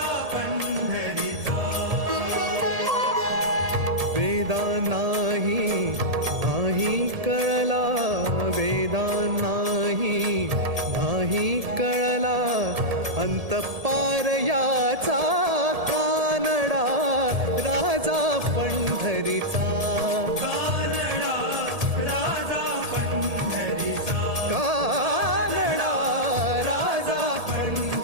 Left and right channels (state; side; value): late; left; 1.8 ms